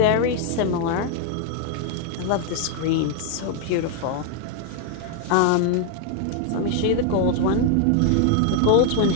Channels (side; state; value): both; different; correlation 0.00